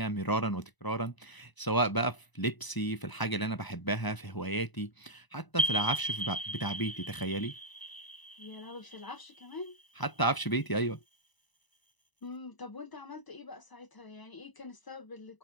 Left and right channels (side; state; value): right; late; 1.0 ms